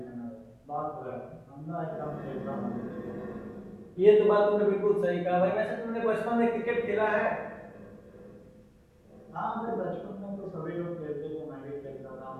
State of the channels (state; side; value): identical; both; correlation 1.00